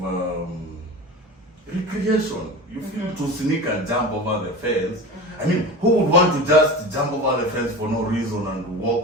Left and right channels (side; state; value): both; normal; correlation 0.31